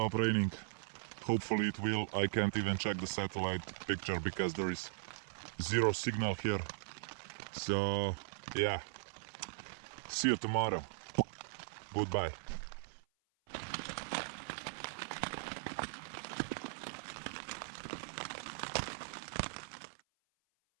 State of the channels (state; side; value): silent; left; 52 dB below the other